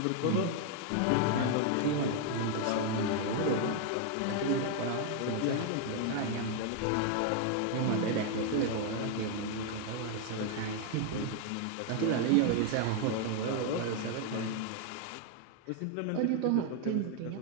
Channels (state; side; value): different; both; correlation 0.00